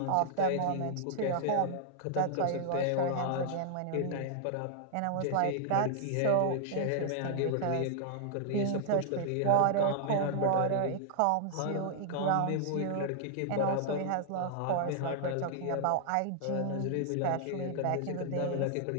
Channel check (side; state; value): both; different; correlation -0.01